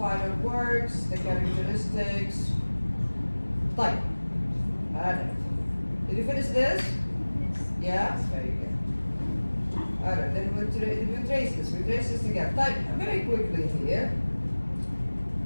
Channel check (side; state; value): both; inverted; correlation -1.00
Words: works, the characteristics. Type. Alright. Did you finish this? Yeah? Very good. Alright, then we trace this. We trace this together. Type very quickly here.